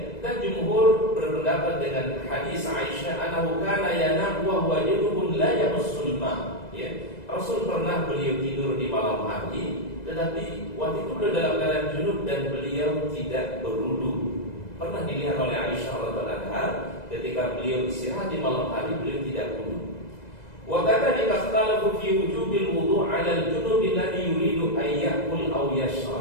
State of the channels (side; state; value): right; late; 2.0 ms